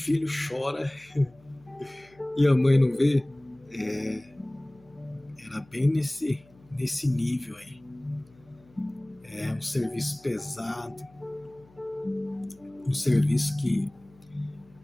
chora e a mãe não vê? Era bem nesse nível aí. É um serviço pesado, um serviço que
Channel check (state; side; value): noise; left; hum, 28 dB below the sound